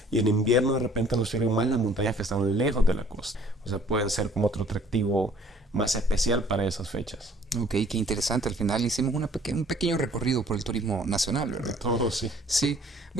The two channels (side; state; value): both; normal; correlation 0.57